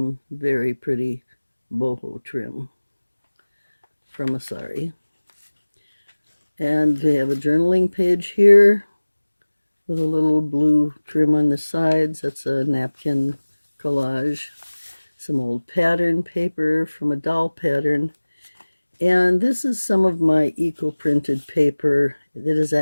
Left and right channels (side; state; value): both; inverted; correlation -1.00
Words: very pretty boho trim from a sari. And we have a journaling page here with a little blue trim on the sides. That's a napkin collage. Some old pattern paper from a doll pattern. And this is some of my eco-printed paper. It is